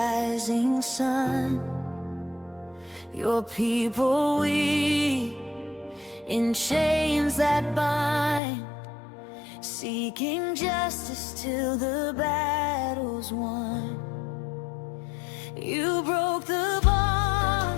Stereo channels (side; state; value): right; drops out; at 8.4 s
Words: sun, your people we, in chains that bind, seeking justice till the battle's won. You broke the